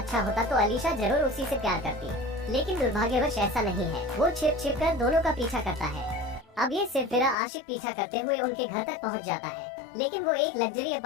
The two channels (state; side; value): drops out; right; at 7.4 s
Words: होता तो अलीशा जरूर उसी से प्यार करती, लेकिन दुर्भाग्यवश ऐसा नहीं है। वो छिप छिप कर दोनों का पीछा करता है। अब ये सिरफिरा आशिक पीछा करते हुए उनके घर तक पहुंच जाता है, लेकिन वो एक लग्जरी